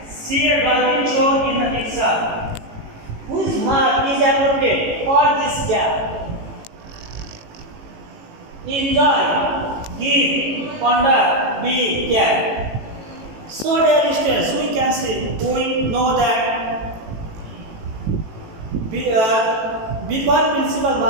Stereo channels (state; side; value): late; left; 18 ms